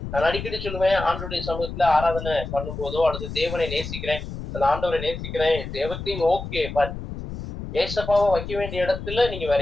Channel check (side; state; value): left; noise; rumble, 8 dB below the sound